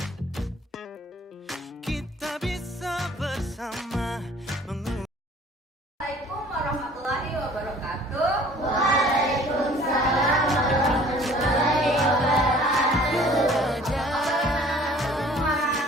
Kita bisa bersama Assalamualaikum warahmatullahi wabarakatuh.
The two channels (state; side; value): normal; both; correlation 0.51